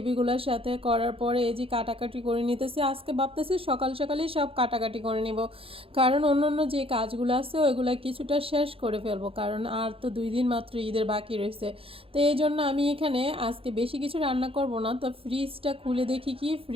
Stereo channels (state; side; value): late; left; 0.27 ms